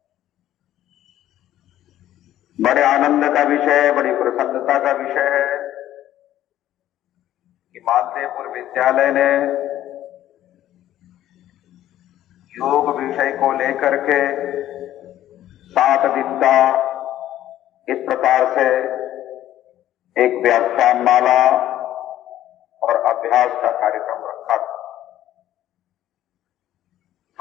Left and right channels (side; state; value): right; quieter; 12.8 dB